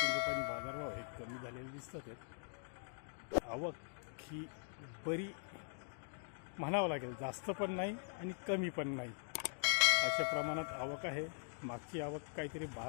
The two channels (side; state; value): right; silent; digital silence